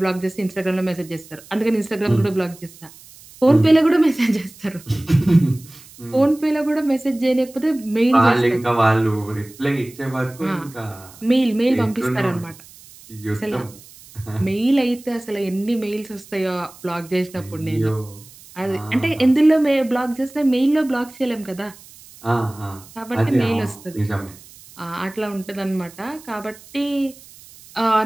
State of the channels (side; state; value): right; noise; hiss, 22 dB below the sound